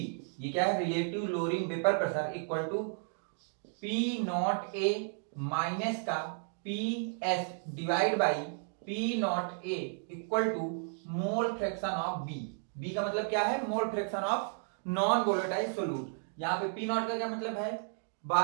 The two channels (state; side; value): silent; left; 56 dB below the other